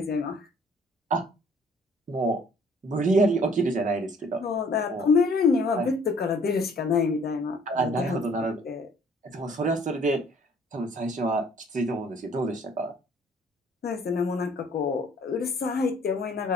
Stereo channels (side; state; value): both; normal; correlation 0.58